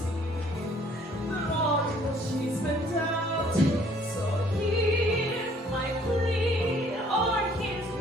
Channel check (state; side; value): normal; both; correlation 0.59